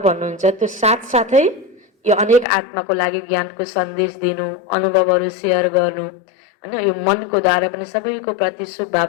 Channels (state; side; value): drops out; right; at 2.5 s